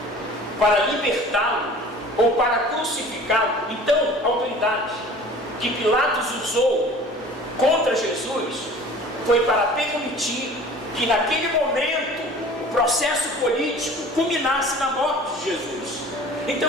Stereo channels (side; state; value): both; normal; correlation 0.45